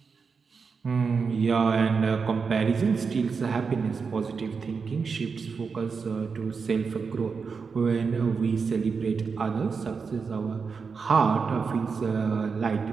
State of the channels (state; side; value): quieter; left; 5.3 dB